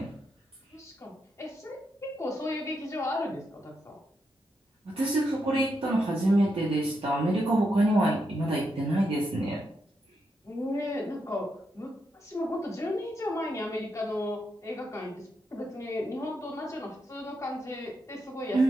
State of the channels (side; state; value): both; normal; correlation 0.82